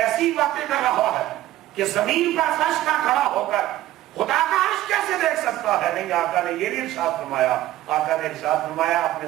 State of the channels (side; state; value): left; quieter; 14.9 dB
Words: باتیں کر رہا ہے کہ زمین پر فرش کا کھڑا ہو کر خدا کا عرش کیسے دیکھ سکتا ہے؟ نہیں، آقا نے یہ نہیں ارشاد فرمایا. آقا نے ارشاد فرمایا اپنے